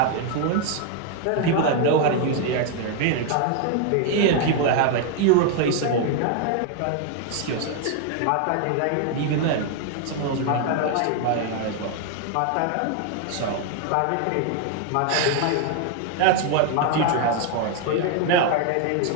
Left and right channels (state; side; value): different; both; correlation 0.00